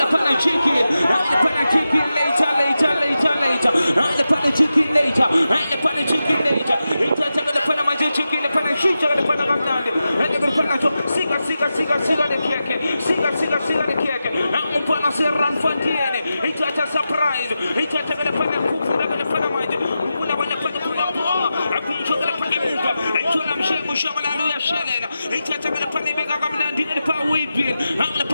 pana chicken. Ngene pana chicken later. Ngene pana chicken later. Ngene pana chicken later. Itata ngene pana manjingi chicken ngene pana shita ngene pana ngamnandi. Ngene pana chona siga de keke. Siga de keke. Ngene pana serran fantiene. Itata surprise. Itata ngene pana kuku ngene pana manje. Kuna wana pana kuna boa. Akunjo ngene pana muka. Itona mshengu shamala ya shelela. Itata ngene pana bega ngamnandi ngene pana whipping. Ngene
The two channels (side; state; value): both; inverted; correlation -0.91